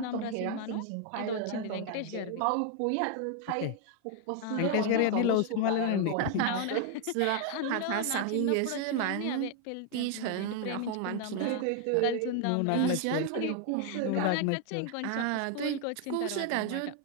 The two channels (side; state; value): both; different; correlation 0.00